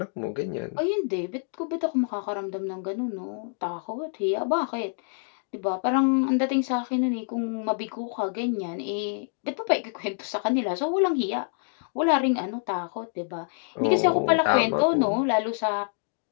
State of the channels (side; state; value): right; silent; digital silence